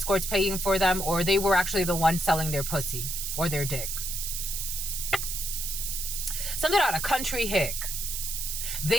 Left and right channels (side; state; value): right; noise; hiss, 3 dB below the sound